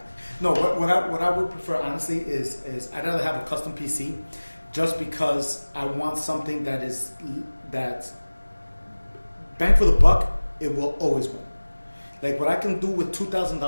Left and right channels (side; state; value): both; inverted; correlation -1.00